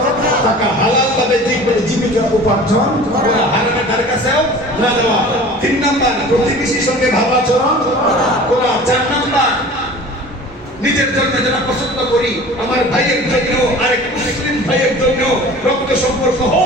থাকা, হালাল ভাবে জীবিকা উপার্জন করা, হারামের ধারে কাছেও না যাওয়া। তিন নাম্বার প্রতিবেশীর সঙ্গে ভালো আচরণ করা। চার নাম্বার নিজের জন্য যারা পছন্দ করি, আমার ভাইয়ের জন্য, আরেক মুসলিম ভাইয়ের জন্য, রক্ত সম্পর্ক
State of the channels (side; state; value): both; normal; correlation 0.42